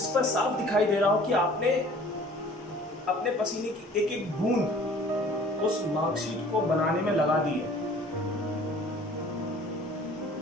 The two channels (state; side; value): normal; both; correlation 0.50